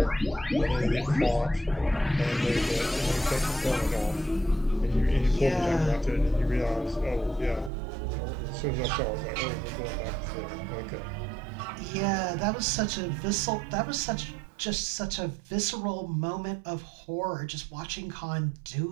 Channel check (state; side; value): drops out; left; at 7.7 s